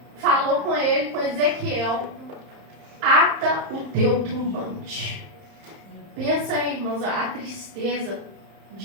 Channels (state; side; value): late; left; 31 ms